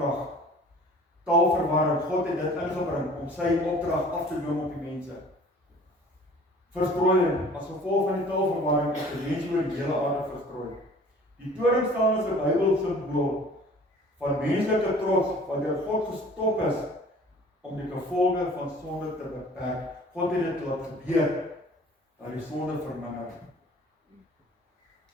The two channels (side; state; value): both; normal; correlation 0.49